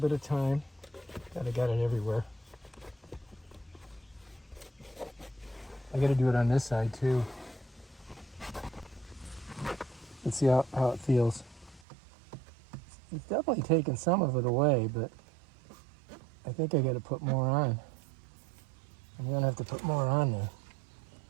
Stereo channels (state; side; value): drops out; left; at 11.8 s